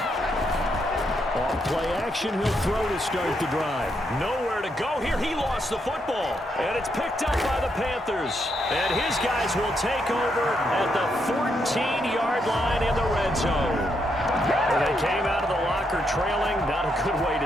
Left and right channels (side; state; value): both; normal; correlation 0.79